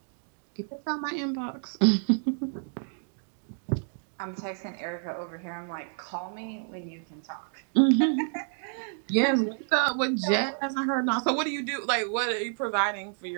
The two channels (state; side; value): silent; left; 58 dB below the other